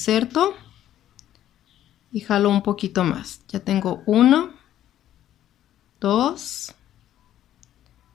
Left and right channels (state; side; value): quieter; right; 12.0 dB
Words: y jalo un poquito más. Ya tengo 1, 2,